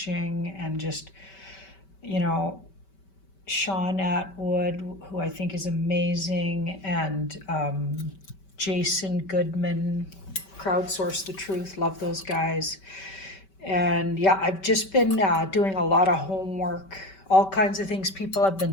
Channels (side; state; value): right; late; 5.2 ms